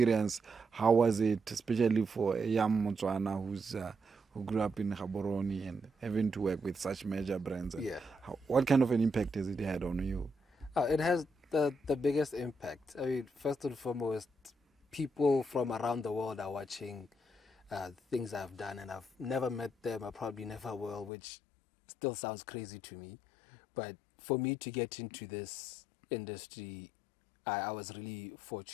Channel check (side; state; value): right; drops out; at 21.1 s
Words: How was it, especially for a young Motswana who grew up in Gaborone and having to work with such major brands? And Yeah. what kind of an impact has it had on you? It has the biggest impact. I mean, first and foremost, people from around the world are watching things I've done, and I've never met them. I probably never will, which still sounds crazy to me. But for me to get into this industry, I was really